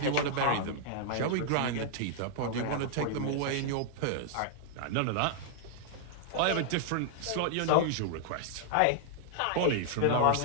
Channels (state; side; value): different; both; correlation -0.01